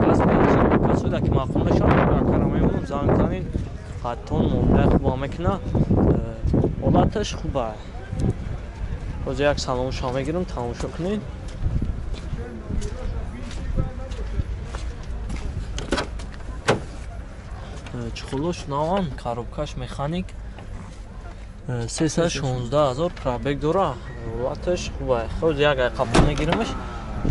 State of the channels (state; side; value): identical; both; correlation 1.00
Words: газ бензин касода ки мақбул мешавад карамаем занг занин хаттон муомила хуба мекуна ҳолаташ хуба боз як салом шумо мегирам тамошо кунед чухулош наван коробкаш механик 316,000 пробег дора ҳолаташ хуба ход як қабул мегирамаш